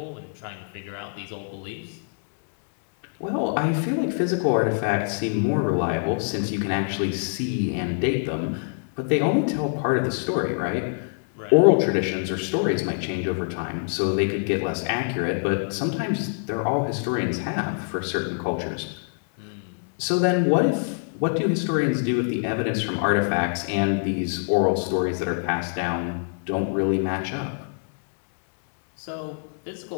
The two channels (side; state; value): right; silent; 60 dB below the other